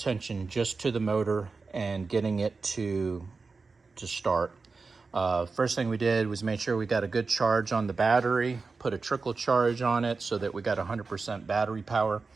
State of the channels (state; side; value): quieter; left; 4.3 dB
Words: just to the motor and getting it to start. First thing we did was make sure we got a good charge on the battery, put a trickle charge on it so that we got 100% battery power.